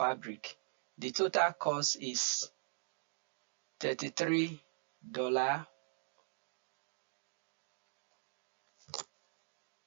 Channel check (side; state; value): left; silent; digital silence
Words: The total cost is $33.